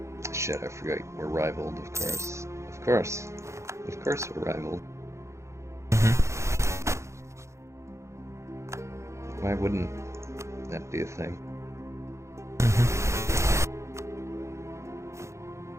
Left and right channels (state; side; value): late; left; 0.14 ms